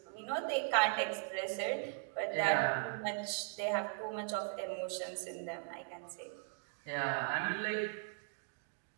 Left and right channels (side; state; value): left; quieter; 36.9 dB